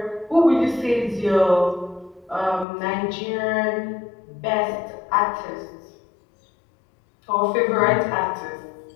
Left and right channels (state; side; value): drops out; right; at 2.7 s